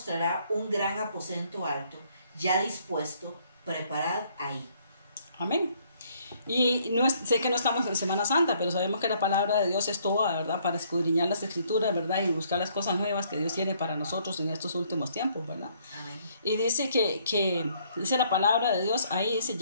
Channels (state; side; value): inverted; both; correlation -0.65